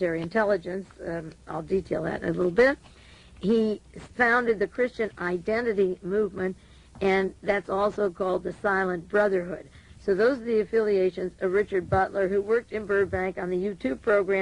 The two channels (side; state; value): both; identical; correlation 1.00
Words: intelligence. I'll detail that in a little bit. He founded the Christian Identity Movement, and that's also called the Silent Brotherhood. So those are the affiliations of Richard Butler, who worked in Burbank on the U2